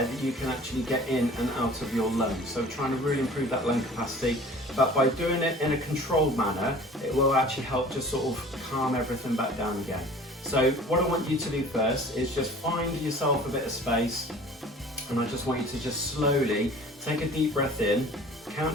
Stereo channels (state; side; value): normal; both; correlation 0.46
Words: that you can actually get in and out of your lungs. So we're trying to really improve that lung capacity, but by doing it in a controlled manner, it will actually help just sort of calm everything back down again. So what I want you to do first is just find yourself a bit of space, and I just want you to just slowly take a deep breath in,